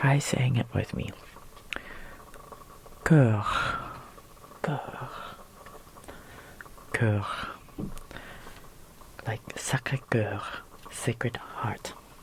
saying it with me. Cœur. Like Sacré-Cœur, Sacred Heart.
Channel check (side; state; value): both; identical; correlation 1.00